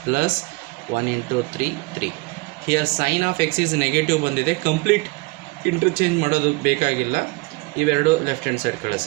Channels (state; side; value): quieter; left; 25.2 dB